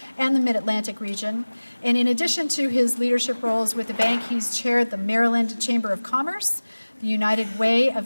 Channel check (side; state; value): both; inverted; correlation -1.00